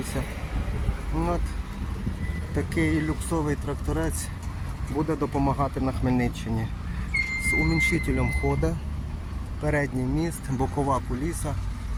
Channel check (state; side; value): identical; both; correlation 1.00